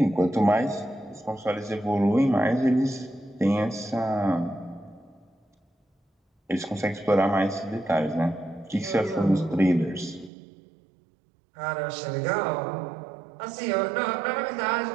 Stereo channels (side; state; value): left; drops out; at 10.3 s